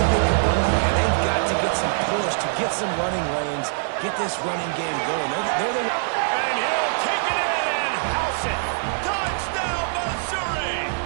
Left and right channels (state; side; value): silent; left; digital silence